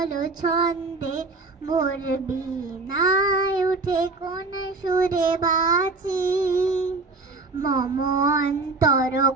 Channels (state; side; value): quieter; left; 3.7 dB